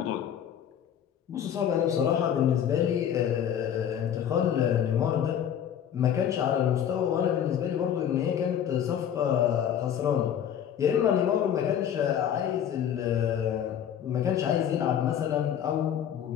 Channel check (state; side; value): quieter; right; 9.3 dB